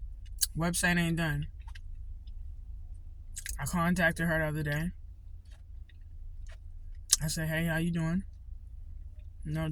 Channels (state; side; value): identical; both; correlation 1.00